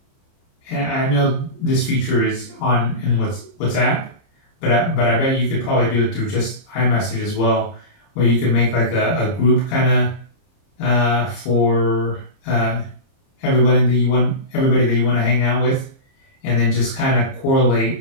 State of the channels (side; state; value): right; late; 30 ms